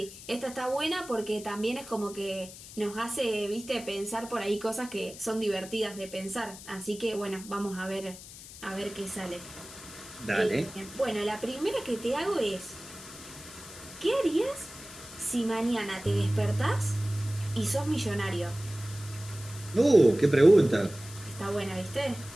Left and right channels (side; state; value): left; noise; hiss, 15 dB below the sound